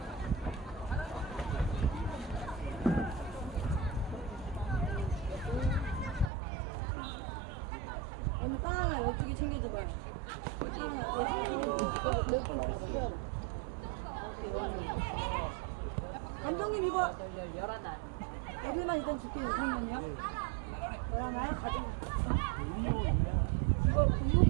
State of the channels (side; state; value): left; drops out; at 6.3 s